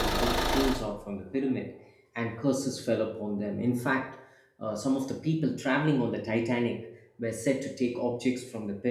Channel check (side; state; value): both; identical; correlation 1.00